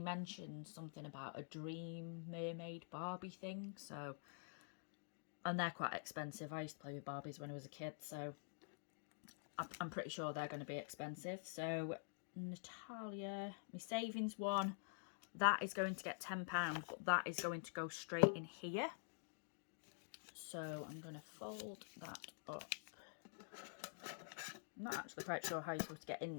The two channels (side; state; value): right; silent; digital silence